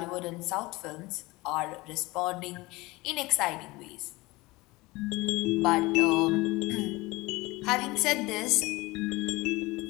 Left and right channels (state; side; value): quieter; right; 21.8 dB